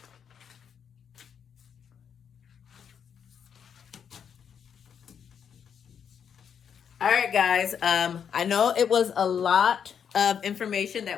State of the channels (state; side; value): quieter; right; 7.7 dB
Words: All right, guys. I know it was a lot of information